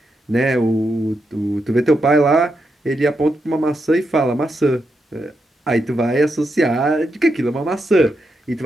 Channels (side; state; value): both; normal; correlation 0.84